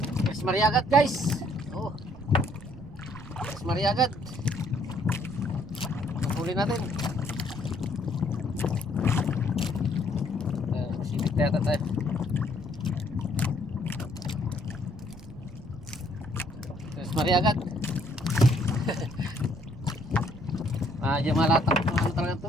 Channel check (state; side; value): noise; right; rumble, 17 dB below the sound